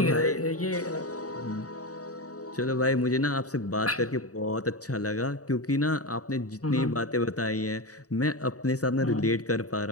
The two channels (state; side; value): late; right; 0.66 ms